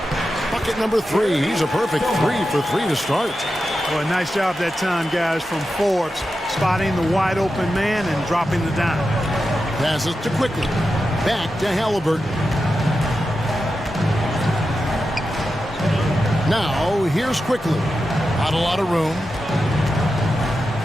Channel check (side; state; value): both; normal; correlation 0.90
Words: Bucket number 3. He's a perfect 3 for 3 to start. Well, a nice job that time, guys, from Forbes, spotting the wide open man and dropping the dime. Passes to Quickly. Back to Halliburton. Now, here's Quickly. Not a lot of room.